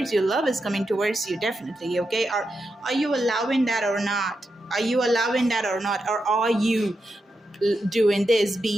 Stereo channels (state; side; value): normal; both; correlation 0.87